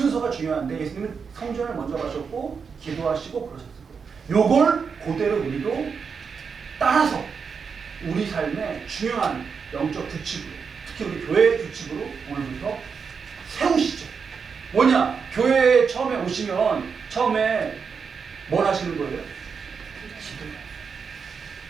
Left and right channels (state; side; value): quieter; left; 5.9 dB